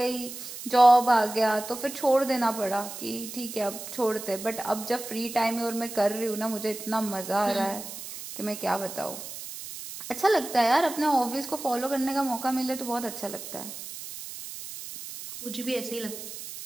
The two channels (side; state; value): right; noise; hiss, 10 dB below the sound